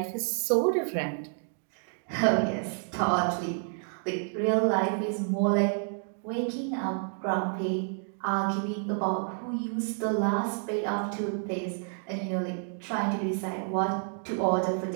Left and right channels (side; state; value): left; silent; 58 dB below the other